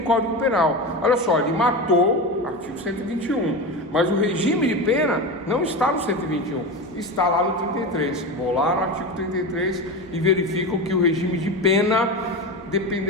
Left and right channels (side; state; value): both; normal; correlation 0.23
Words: Código Penal. Olha só, ele matou, artigo 121. Mas o regime de pena não está no 121, está lá no 33. Vou lá no artigo 33 e verifico que o regime de pena